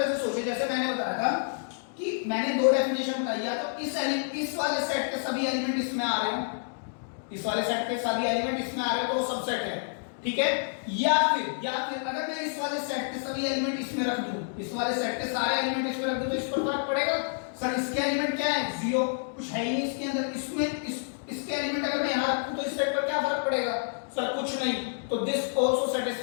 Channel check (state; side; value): silent; right; digital silence